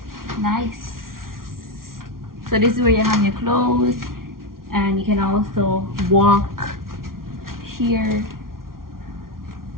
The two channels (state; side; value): late; left; 0.92 ms